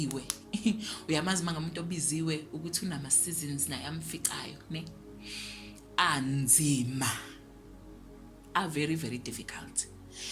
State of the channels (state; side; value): identical; both; correlation 1.00